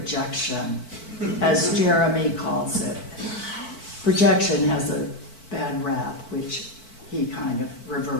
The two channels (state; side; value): late; right; 4.5 ms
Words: as Jeremy calls it. Projection has a bad rap, which he kind of